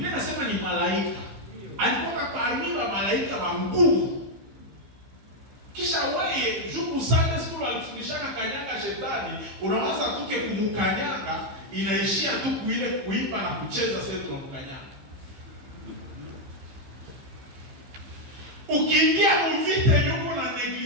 inasema ni malaika. Alikuwa parmi wa malaika wa nguvu. Kisha wewe juku Sunday school alifundishaka kanyanga shetani, unawaza tuke kumukanyanga, inaishia tu kuile kuimba na kucheza sasa tunamkanyanga. Ukiingia mvita yuko na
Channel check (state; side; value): late; left; 15 ms